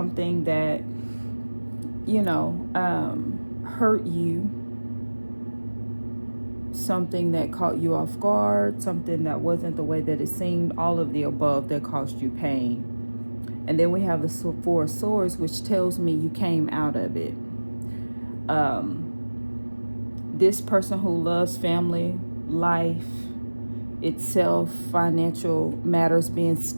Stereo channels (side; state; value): both; inverted; correlation -1.00